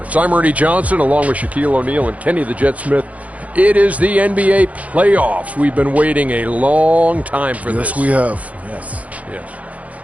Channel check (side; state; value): left; late; 0.068 ms